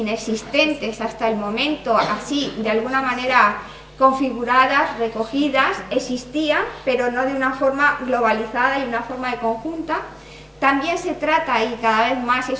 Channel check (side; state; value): both; identical; correlation 1.00